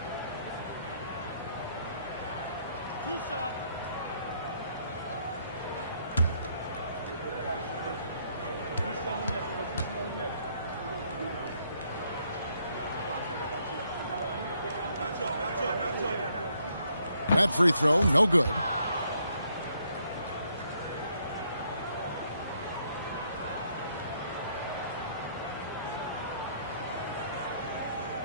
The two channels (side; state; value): both; inverted; correlation -0.70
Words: That free throw, no good.